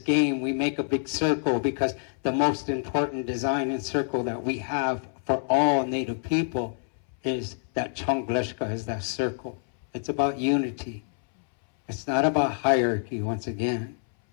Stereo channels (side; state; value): right; silent; 60 dB below the other